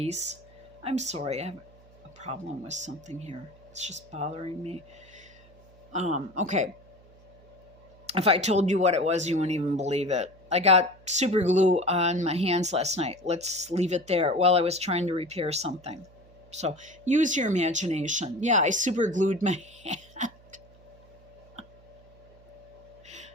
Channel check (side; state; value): right; noise; hum, 26 dB below the sound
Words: I'm sorry, I have a problem with something here. It's just bothering me. Okay. If I told you what it was, you wouldn't even believe it. I got super glue on my hands last night. Let's leave it there while I was trying to repair something. So use your imagination. Yeah, I super glued my hand.